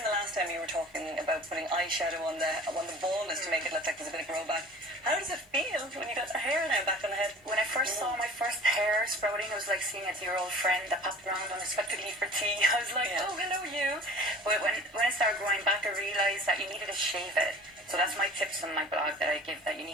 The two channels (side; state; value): both; normal; correlation 0.43